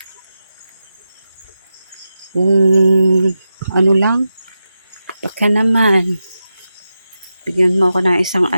Ano lang. Baka naman. Bigyan mo ako ng isang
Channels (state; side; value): inverted; both; correlation -0.90